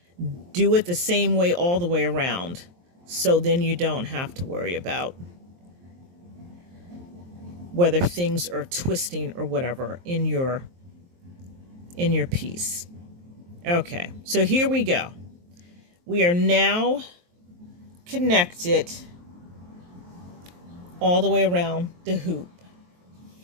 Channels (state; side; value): late; left; 23 ms